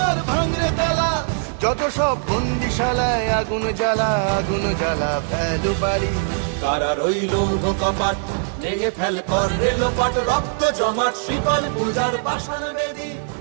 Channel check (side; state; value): left; silent; digital silence